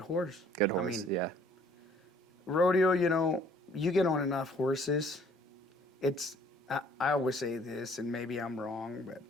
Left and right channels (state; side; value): normal; both; correlation 0.58